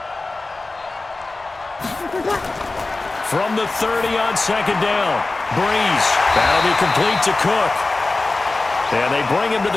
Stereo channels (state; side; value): quieter; right; 3.3 dB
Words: From the 30 on 2nd down, Brees. That'll be complete to Cook. And they bring him to